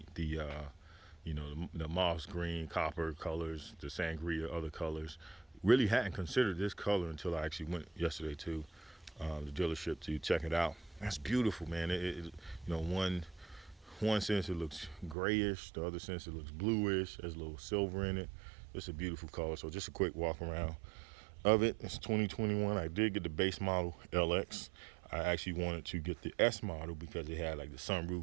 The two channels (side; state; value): left; drops out; at 15.2 s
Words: the moss green, copper colors, the sangria, other colors. Really hadn't considered this color until I actually went yesterday to the dealership to check it out. That's beautiful, man. One sense it looks grayish, the other sense it looks bluish. There's a little silver in it. It's a beautiful color. So just a quick walk around of it. It's 2021. I did get the base model LX. I actually wanted to get the S model because it had like the